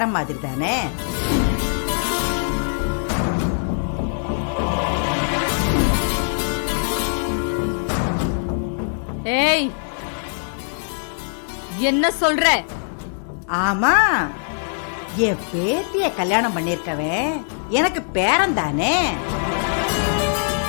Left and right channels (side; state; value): right; silent; digital silence